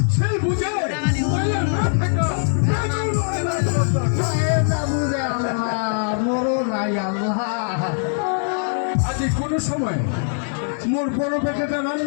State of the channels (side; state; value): right; silent; digital silence